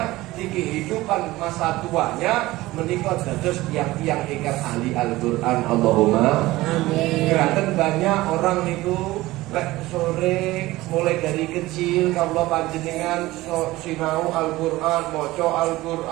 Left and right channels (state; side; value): quieter; left; 18.4 dB